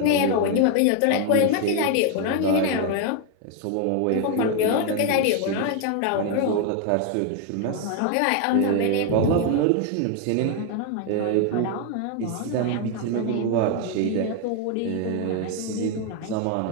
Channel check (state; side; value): different; both; correlation 0.01